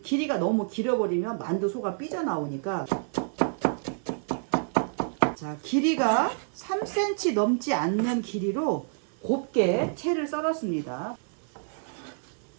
길이가 너무 길어버리면 만두 소가 삐져나오니까, 자, 길이가 3cm 넘지 않는 길이로 곱게 채를 썰었습니다.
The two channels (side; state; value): left; silent; 59 dB below the other